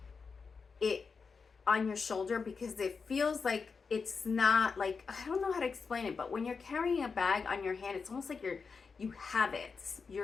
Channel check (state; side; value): quieter; right; 5.1 dB